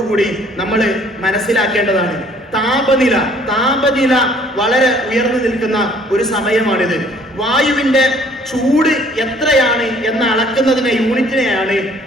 കൂടി നമ്മൾ മനസ്സിലാക്കേണ്ടതാണ്. താപനില വളരെ ഉയർന്നു നിൽക്കുന്ന ഒരു സമയമാണിത്. വായുവിന്റെ ചൂട് എത്രയാണ് എന്ന് അളക്കുന്നതിനെ യൂണിറ്റിനെയാണ്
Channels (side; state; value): both; normal; correlation 0.58